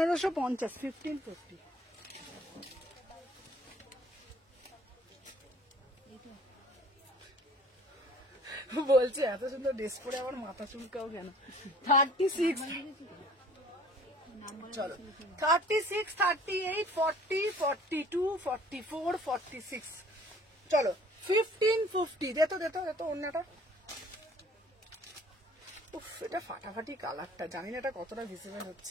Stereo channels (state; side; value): normal; both; correlation 0.52